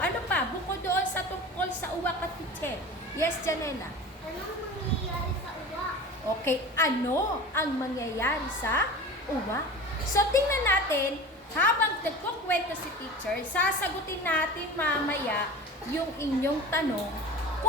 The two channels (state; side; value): normal; both; correlation 0.35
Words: pa? Bukod doon sa tungkol sa uwak at pitser. Yes, Janela. Ano ang mangyayari sa uwak? Okay, ano ang mangyayari sa uwak? So, tingnan natin, habang nagkukwento si teacher, sasagutin natin mamaya yung inyong tanong